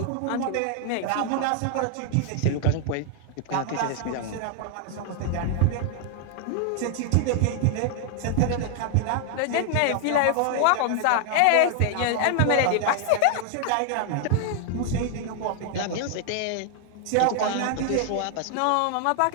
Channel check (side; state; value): both; different; correlation 0.00